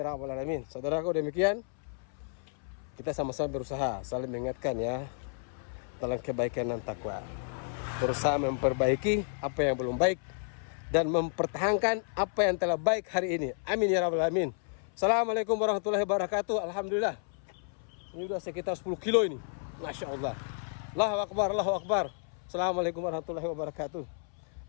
rabbal alamin. Saudaraku, demikian kita sama-sama berusaha saling mengingatkan ya dalam kebaikan dan takwa, berusaha memperbaiki apa yang belum baik dan mempertahankan apa yang telah baik hari ini. Amin ya rabbal alamin. Assalamualaikum warahmatullahi wabarakatuh. Alhamdulillah, ini udah sekitar 10 kilo ini. Masya Allah. Allahu Akbar, Allahu Akbar. Assalamualaikum warahmatullahi wabarakatuh.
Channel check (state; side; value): silent; right; 57 dB below the other